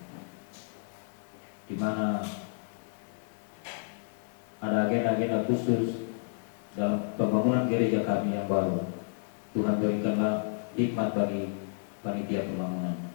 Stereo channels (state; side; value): silent; right; digital silence